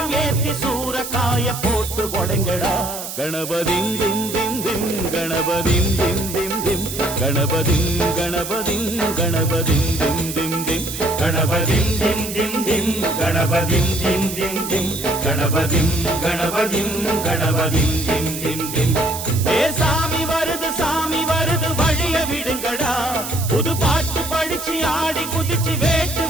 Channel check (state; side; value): noise; right; hiss, 8 dB below the sound